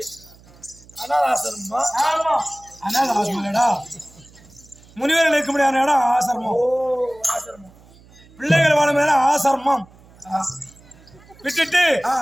அனாதாசிரமடா, முனிவர்கள் இருக்க முடியாத இடம் ஆசிரமம். பிள்ளைகள் வாழும் இடம் ஆசிரமம். விட்டுட்டு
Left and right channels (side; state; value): right; noise; hum, 26 dB below the sound